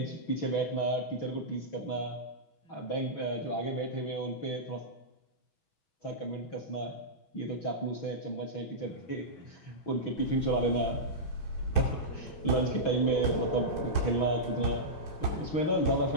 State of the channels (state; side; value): late; right; 6.2 ms